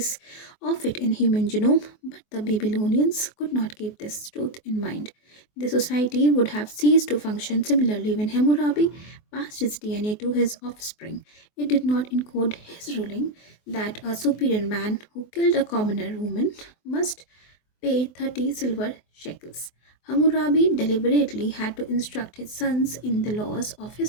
of it in human genome, but the Babylonians could not keep this truth in mind. The society would have ceased to function similarly when Hammurabi passed his DNA to his offspring. It did not encode his ruling that a superior man who killed a commoner woman must pay 30 silver shekels. Hammurabi deliberately had to instruct his sons in the laws of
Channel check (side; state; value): right; late; 24 ms